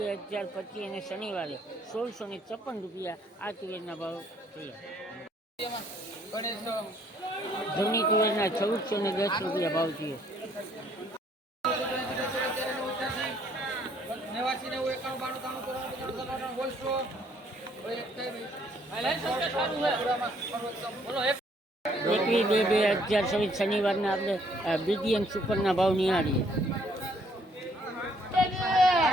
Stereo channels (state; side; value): normal; both; correlation 0.65